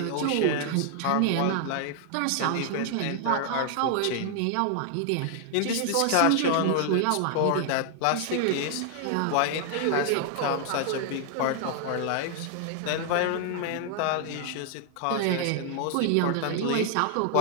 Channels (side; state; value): both; different; correlation 0.00